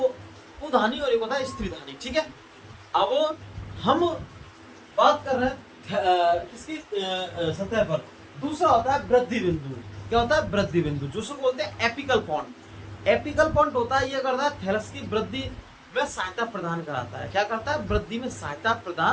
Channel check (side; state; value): both; identical; correlation 1.00